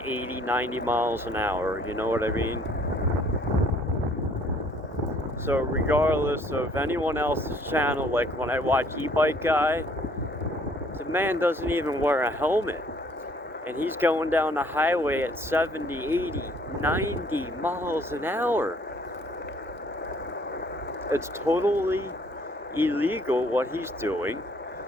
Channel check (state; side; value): normal; both; correlation 0.60